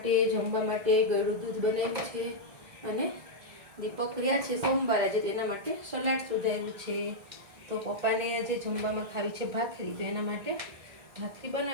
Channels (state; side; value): late; left; 1.7 ms